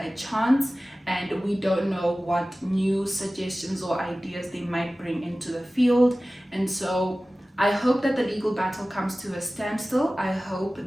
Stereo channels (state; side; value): normal; both; correlation 0.97